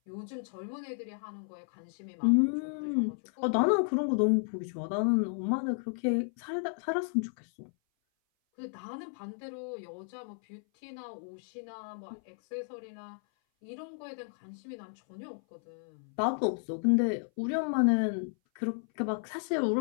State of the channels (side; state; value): right; silent; 56 dB below the other